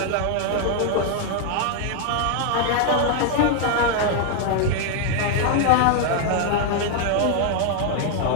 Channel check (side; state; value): both; different; correlation 0.00